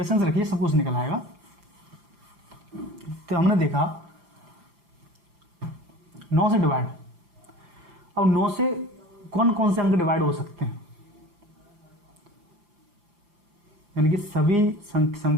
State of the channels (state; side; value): late; left; 5.8 ms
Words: रखिए, सब कुछ निकल आएगा। तो हमने देखा 9 से डिवाइड, अब 9 से कौन कौन से अंक डिवाइड हो सकते हैं, यानी कि सभी